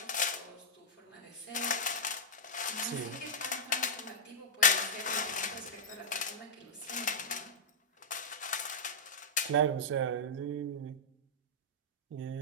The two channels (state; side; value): normal; both; correlation -0.09